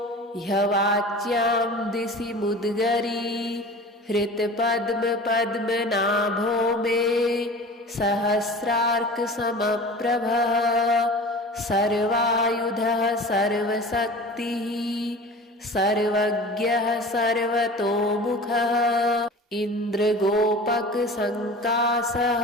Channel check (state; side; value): normal; both; correlation 0.38